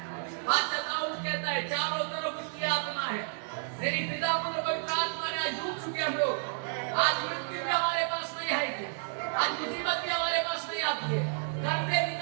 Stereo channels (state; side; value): silent; left; 56 dB below the other